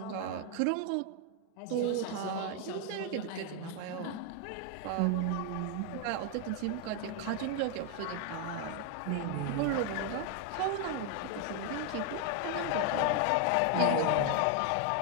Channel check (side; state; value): both; different; correlation 0.00